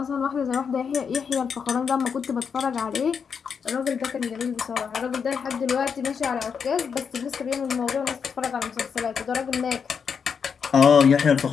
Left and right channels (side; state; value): right; quieter; 6.5 dB